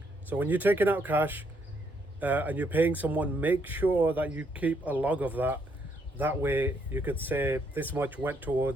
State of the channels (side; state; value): both; normal; correlation 0.73